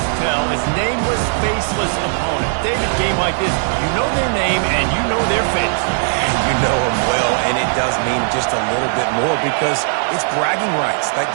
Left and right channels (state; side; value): silent; left; 56 dB below the other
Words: tell is nameless, faceless opponent. David, game like this, you know their name and you know their face. You know them well, and it does mean just a little bit more because it's bragging rights. Like,